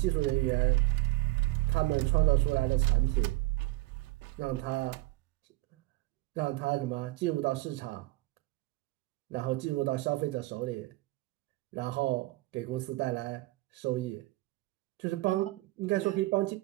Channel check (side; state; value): left; quieter; 19.2 dB